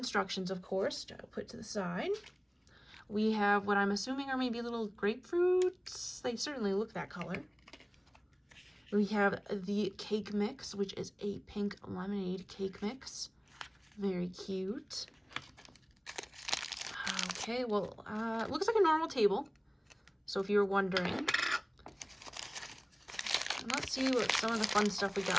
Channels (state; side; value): identical; both; correlation 1.00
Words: of course, to put to the side. We have what I'm assuming are maybe little grapefruits. They certainly look that color. We have the cake mix, which is a pink lemonade cake mix. Very cute. Okay, well, it looks like a normal table. So if you were wondering. Let's see what some of the fun stuff we